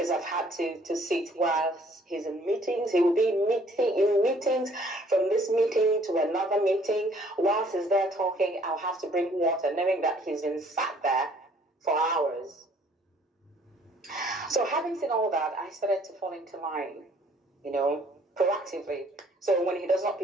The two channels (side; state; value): both; normal; correlation 0.60